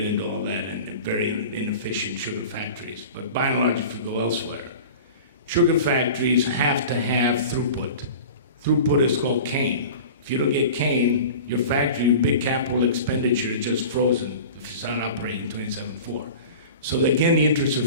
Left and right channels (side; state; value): both; inverted; correlation -0.37